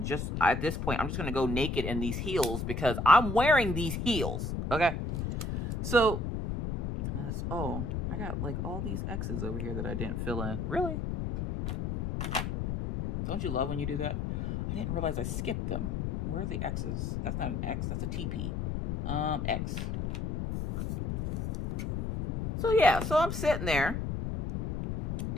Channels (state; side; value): noise; left; rumble, 2 dB below the sound